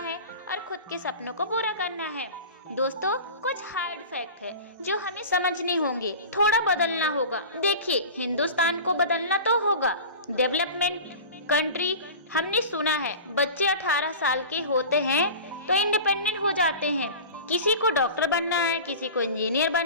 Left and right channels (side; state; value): both; inverted; correlation -0.35